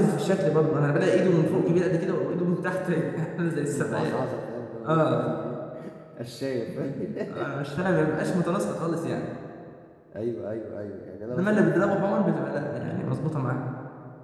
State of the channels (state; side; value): identical; both; correlation 1.00